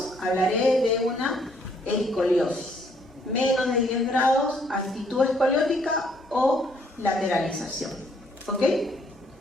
hablaré de una escoliosis. Menos de 10 grados, actitud escoliótica o lateralización. ¿Ok?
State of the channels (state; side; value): normal; both; correlation 0.66